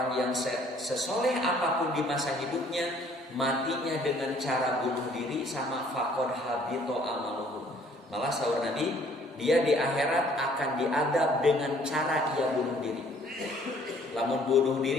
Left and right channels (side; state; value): both; normal; correlation 0.59